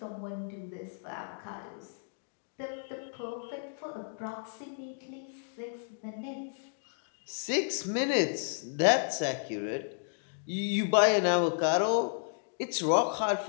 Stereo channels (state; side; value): silent; right; digital silence